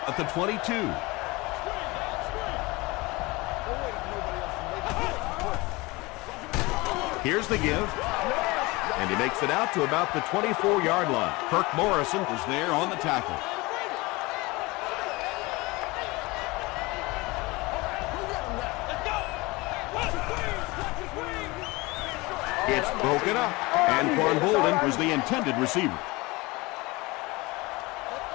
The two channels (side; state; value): right; quieter; 23.2 dB